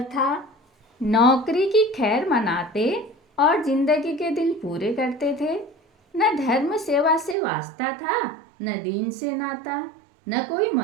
था। नौकरी की खैर मनाते और जिंदगी के दिन पूरे करते थे। न धर्म सेवा से वास्ता था, न दीन से नाता, न कोई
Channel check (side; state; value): left; drops out; at 7.4 s